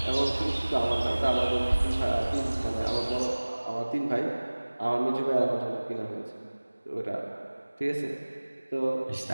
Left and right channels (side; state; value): both; inverted; correlation -1.00